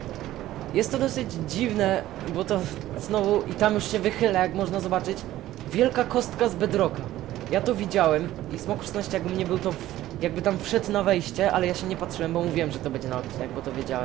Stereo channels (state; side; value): quieter; left; 14.5 dB